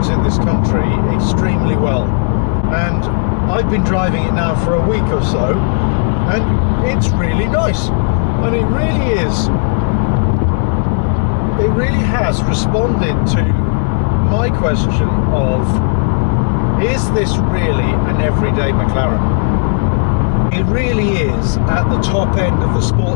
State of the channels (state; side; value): silent; right; digital silence